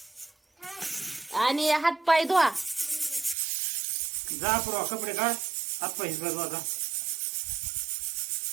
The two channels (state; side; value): drops out; left; at 3.4 s